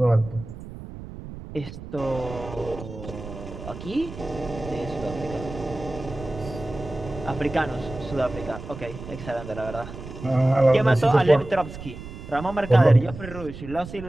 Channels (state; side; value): noise; right; rumble, 12 dB below the sound